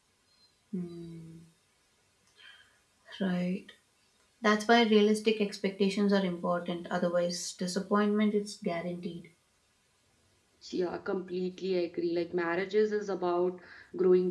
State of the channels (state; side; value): identical; both; correlation 1.00